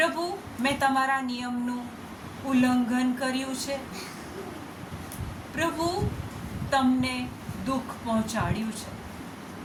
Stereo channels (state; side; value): identical; both; correlation 1.00